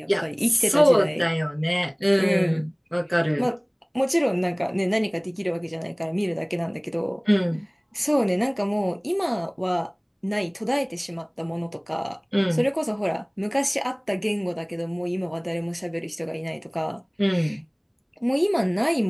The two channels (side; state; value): both; identical; correlation 1.00